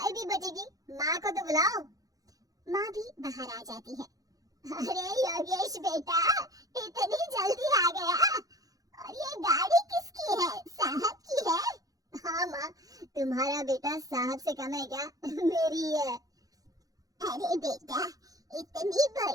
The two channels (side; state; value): left; late; 0.17 ms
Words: भी बचेगी। माँ को तो बुलाओ। माँ भी बाहर आ जाती है। अरे योगेश बेटा, इतनी जल्दी आ गया? और ये गाड़ी किसकी है? साहब की है? हाँ माँ, तुम्हारा बेटा साहब से कम है क्या? मेरी है। अरे बेटा, इतनी